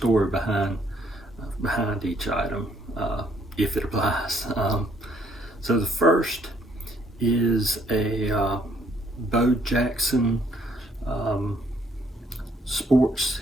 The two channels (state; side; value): normal; both; correlation 0.66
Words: behind each item, if it applies. So the first is a Bo Jackson Sports